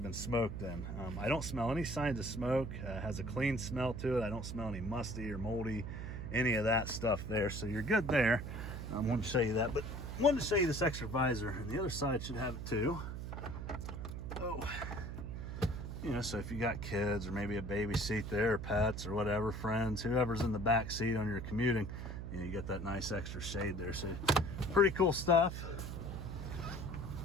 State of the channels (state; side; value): noise; right; hum, 6 dB below the sound